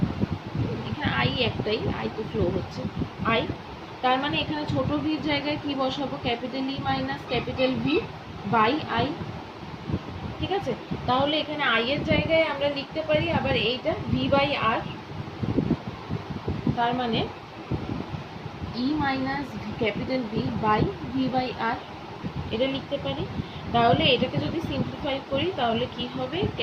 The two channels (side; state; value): both; identical; correlation 1.00